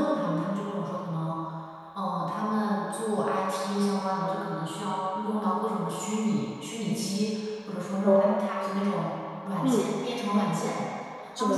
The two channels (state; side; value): identical; both; correlation 1.00